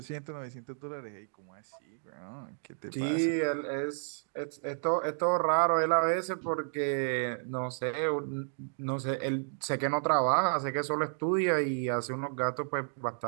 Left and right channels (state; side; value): silent; left; digital silence